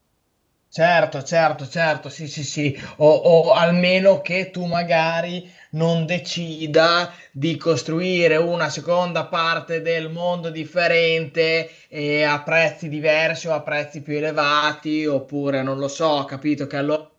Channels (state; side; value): identical; both; correlation 1.00